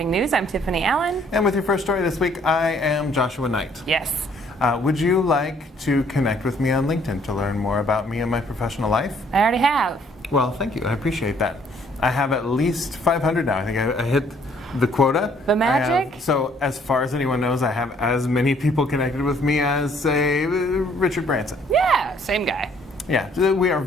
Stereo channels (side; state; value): both; normal; correlation 0.63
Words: News. I'm Tiffani Allen. And with your first story this week, I am Joshua Nite. Yes. Would you like to connect with me on LinkedIn to learn more about me and my professional life? I already have. Well, thank you. I appreciate that. I have at least 500 now. I think I hit the quota. The magic? So as far as anyone knows, I have as many people connected with me as, say, Richard Branson. Yeah, same guy. Yeah, we are